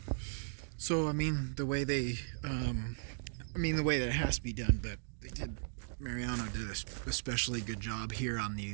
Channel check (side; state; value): left; silent; digital silence